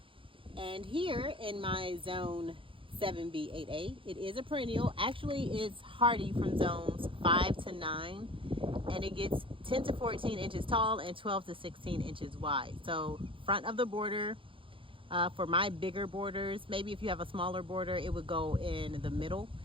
And here in my zone 7B8A, it is a perennial. Actually, it's hardy from zones 5 to 9, and it gets 10 to 14 inches tall and 12 to 16 inches wide. So front of the border, for my bigger borders, maybe if you have a smaller border, it would go in the middle,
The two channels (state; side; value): late; left; 0.25 ms